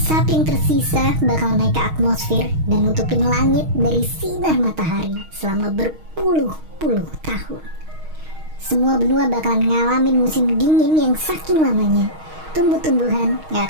yang tersisa bakal naik ke atmosfer dan nutupin langit dari sinar matahari selama berpuluh-puluh tahun. Semua benua bakalan ngalamin musim dingin yang saking lamanya tumbuh-tumbuhan gak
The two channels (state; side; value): late; left; 6.4 ms